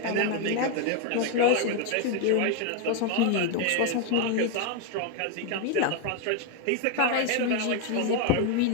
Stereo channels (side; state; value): both; different; correlation 0.01